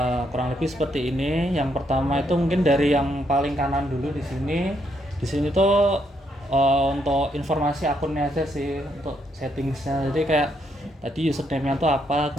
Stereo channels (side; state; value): both; normal; correlation 0.75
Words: Kurang lebih seperti ini. Yang pertama itu mungkin dari yang paling kanan dulu di sini. Di sini tuh untuk informasi akunnya aja sih, untuk settingsnya. Jadi kayak tadi username-nya tuh apa,